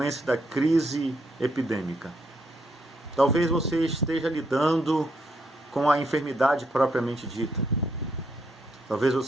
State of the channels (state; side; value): normal; both; correlation 0.75